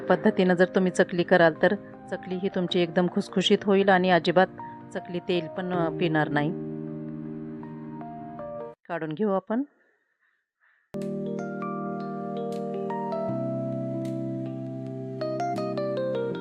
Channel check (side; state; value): both; identical; correlation 1.00